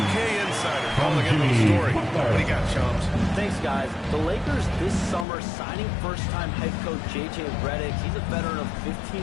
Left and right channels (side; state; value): right; drops out; at 5.2 s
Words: insider calling in the story. What do you got, Shams? Thanks, guys. The Lakers this summer signing first-time head coach J.J. Redick. He's a veteran of